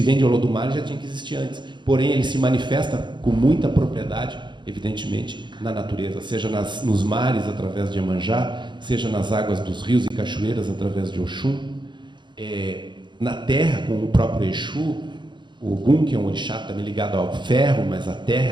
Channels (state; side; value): late; left; 0.22 ms